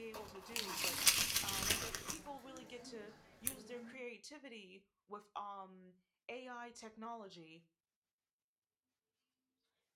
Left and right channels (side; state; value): both; identical; correlation 1.00